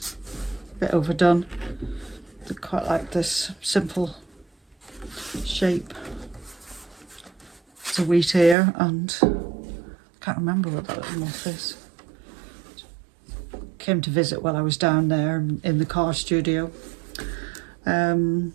a bit overdone. I quite like this simple shape. It's a wheat ear, and I can't remember what that little moth is. Came to visit while I was down there in the car studio. Burton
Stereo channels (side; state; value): left; drops out; at 8.6 s